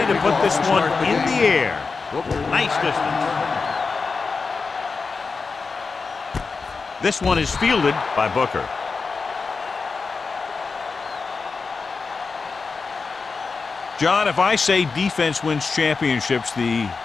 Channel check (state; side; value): quieter; right; 4.6 dB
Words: to put this one in the air. Nice distance. This one is fielded by Booker. John, if I say defense wins championships, the